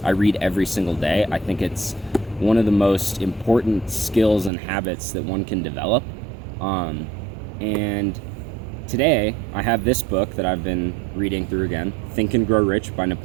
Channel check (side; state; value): left; drops out; at 4.5 s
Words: I read every single day. I think it's one of the most important skills and habits that one can develop. And today I have this book that I've been reading through again, Think and Grow Rich by